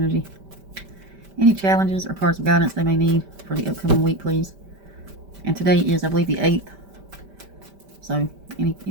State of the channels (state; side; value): late; left; 5.1 ms